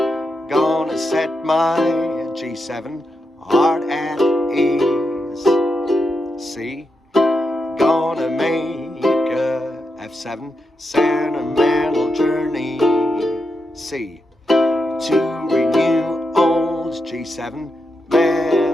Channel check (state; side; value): normal; both; correlation 0.85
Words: gonna set my G7 heart at ease. C. Gonna make a F7 sentimental journey. C. To renew G7,